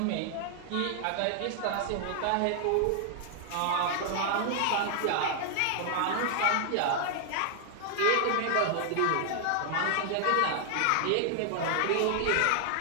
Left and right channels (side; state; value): both; different; correlation 0.00